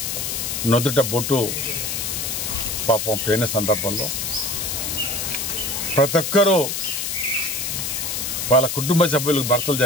నొదుట బొట్టు పాపం పోయిన సందర్భంలో ప్రతి ఒక్కరూ వాళ్ళ కుటుంబ సభ్యులకు భర్తలు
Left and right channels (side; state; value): left; noise; hiss, 2 dB below the sound